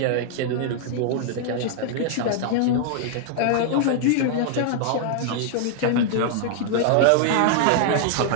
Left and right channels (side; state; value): both; different; correlation -0.01